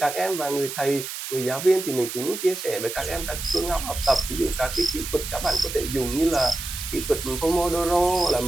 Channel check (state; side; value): noise; right; hiss, 7 dB below the sound